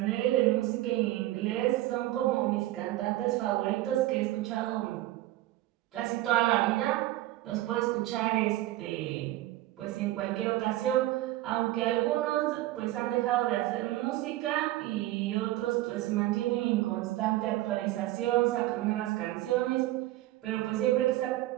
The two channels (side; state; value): left; quieter; 16.3 dB